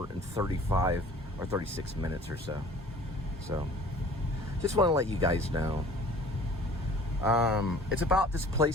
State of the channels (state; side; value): normal; both; correlation 0.49